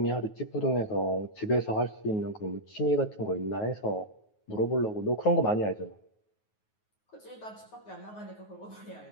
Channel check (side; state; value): right; late; 9.4 ms